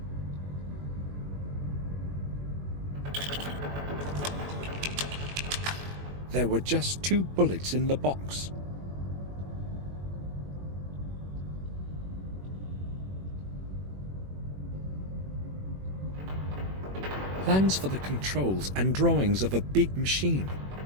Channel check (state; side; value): late; left; 21 ms